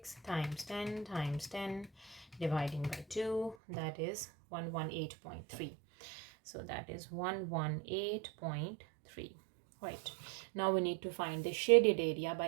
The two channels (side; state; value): left; drops out; at 3.6 s